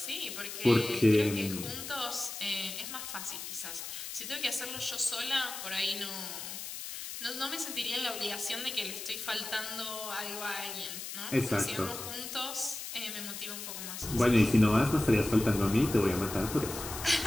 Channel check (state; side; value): noise; left; hiss, 8 dB below the sound